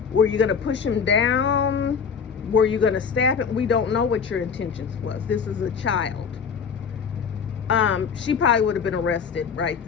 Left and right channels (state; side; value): quieter; right; 6.3 dB